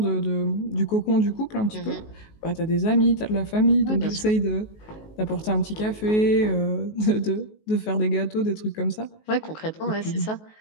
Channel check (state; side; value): late; right; 19 ms